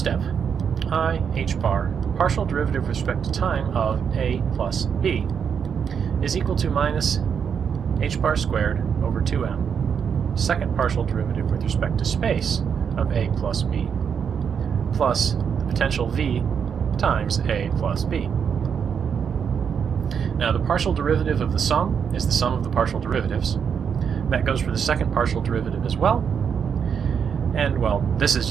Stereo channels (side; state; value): left; quieter; 7.1 dB